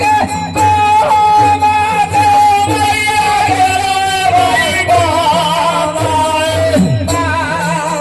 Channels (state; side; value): identical; both; correlation 1.00